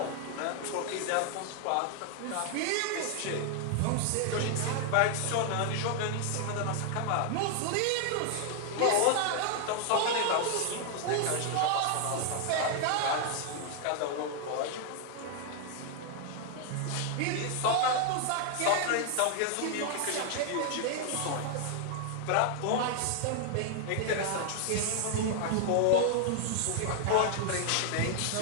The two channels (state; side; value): different; both; correlation 0.00